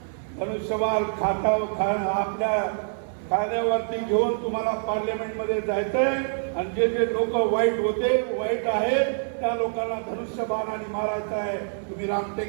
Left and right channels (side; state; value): left; silent; 61 dB below the other